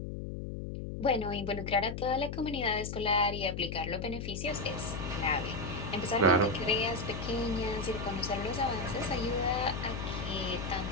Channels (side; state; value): left; noise; hum, 6 dB below the sound